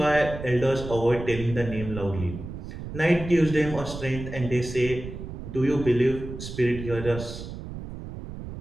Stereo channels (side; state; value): right; noise; rumble, 10 dB below the sound